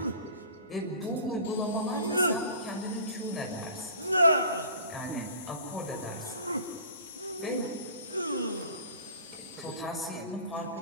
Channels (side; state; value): both; inverted; correlation -0.42